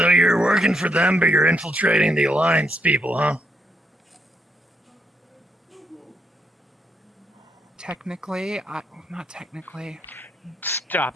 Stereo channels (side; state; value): both; normal; correlation 0.77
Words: you're working for them, but you're infiltrating the Alliance people, huh? technically, not technically.